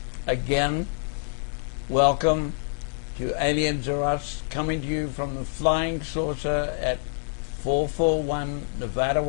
Again, welcome to Aliens Are Us, coming to you from the Flying Saucer at 441 Nevada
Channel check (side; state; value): right; silent; digital silence